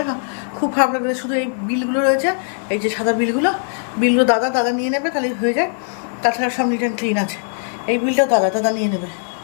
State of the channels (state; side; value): silent; right; digital silence